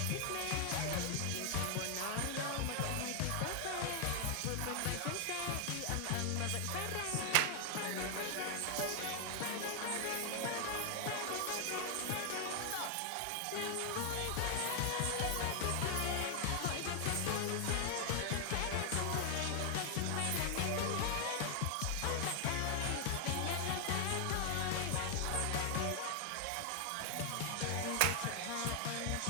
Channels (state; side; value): different; both; correlation 0.00